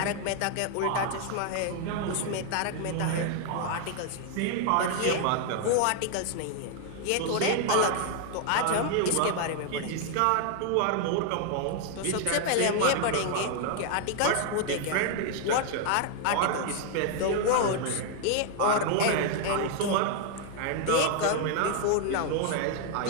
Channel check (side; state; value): both; different; correlation 0.00